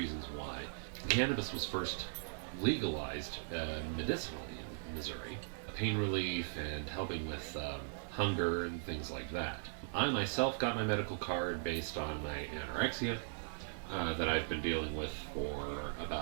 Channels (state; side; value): silent; left; digital silence